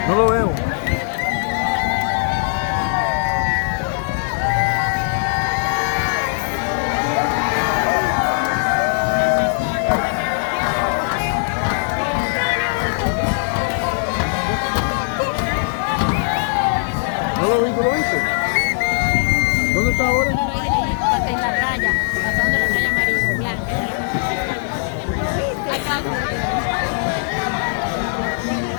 No lo veo. ¿No lo viste? ¿Dónde está ahora? En la raya, pasando la raya amarilla, blanca.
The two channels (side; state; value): right; silent; digital silence